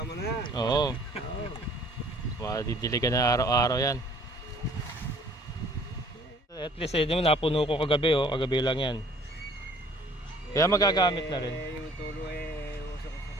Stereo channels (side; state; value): both; normal; correlation 0.55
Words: na. Oo. Oo. Madidiligan na araw-araw yan. At least eh, napuno ko kagabi, oh. Kagabi lang yan. Kaya magagamit na rin. Yung tulo usok-usok